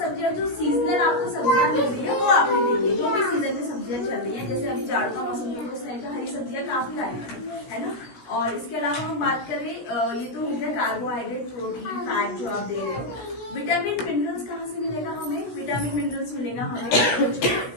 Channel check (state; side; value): late; right; 17 ms